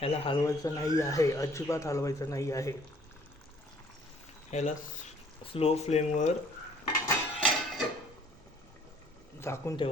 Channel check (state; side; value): noise; right; hum, 28 dB below the sound